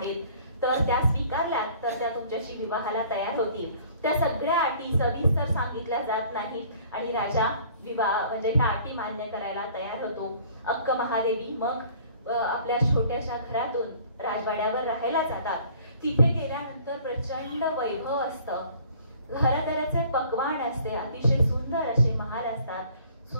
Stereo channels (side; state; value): both; inverted; correlation -0.53